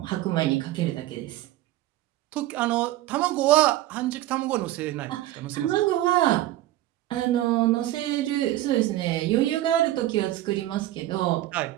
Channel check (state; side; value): quieter; left; 15.0 dB